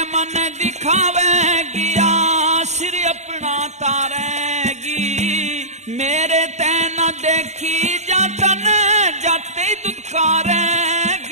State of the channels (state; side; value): late; left; 0.33 ms